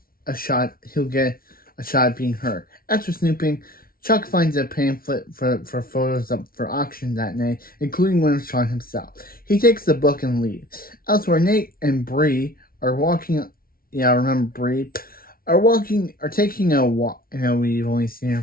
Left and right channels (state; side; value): late; right; 0.43 ms